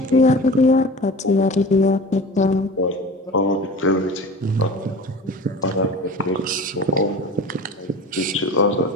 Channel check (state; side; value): normal; both; correlation 0.37